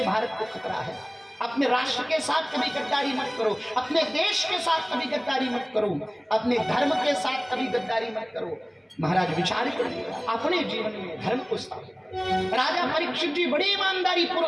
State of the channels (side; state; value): both; identical; correlation 1.00